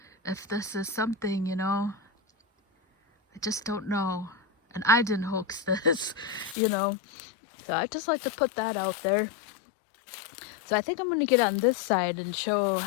something, you know, I just don't know. And I didn't hoax this, you know. So I just like to put that out there. So I think I'm going to get on this side and show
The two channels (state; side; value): drops out; right; at 6.6 s